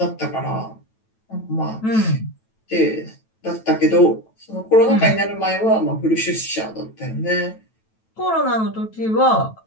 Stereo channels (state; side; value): late; right; 9.1 ms